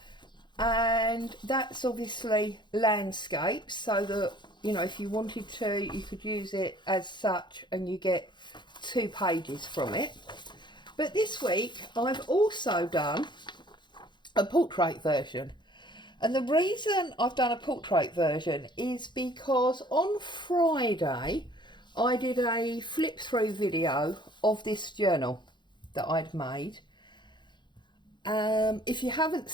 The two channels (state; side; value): late; right; 0.22 ms